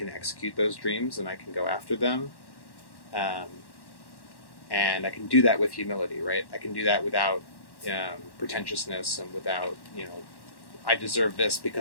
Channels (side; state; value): right; late; 1.1 ms